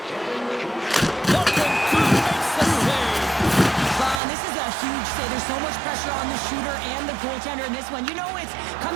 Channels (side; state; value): left; drops out; at 4.2 s